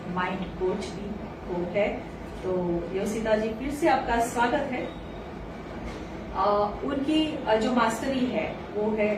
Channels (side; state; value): both; identical; correlation 1.00